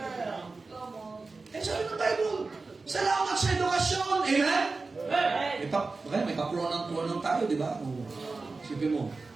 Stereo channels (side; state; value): left; quieter; 3.9 dB